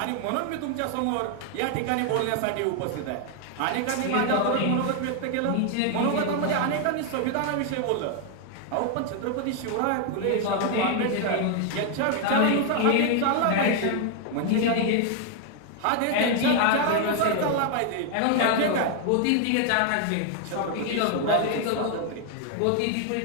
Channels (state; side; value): different; both; correlation 0.00